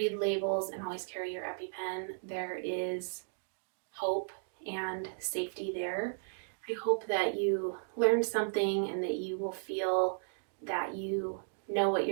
labels, and always carry your EpiPen. There is hope and safety there. I hope that you learned something and that you will feel that you know what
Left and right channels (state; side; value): silent; left; digital silence